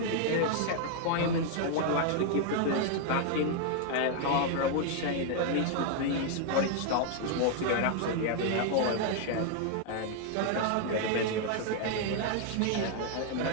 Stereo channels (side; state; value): both; different; correlation 0.00